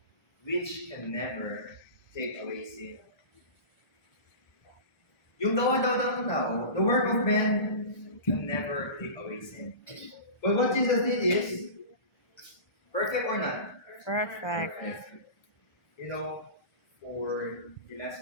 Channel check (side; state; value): right; late; 1.5 ms